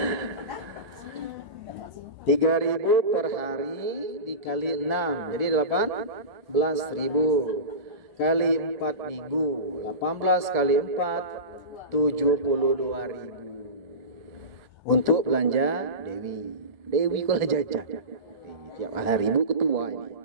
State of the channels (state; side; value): late; left; 1.8 ms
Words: Rp3.000 per hari dikali 6, jadi 18.000 kali 4 minggu. 18 kali 4 72.000 untuk belanja Dewi. Dewi kalau jajan tiap hari, ibu ketua ini.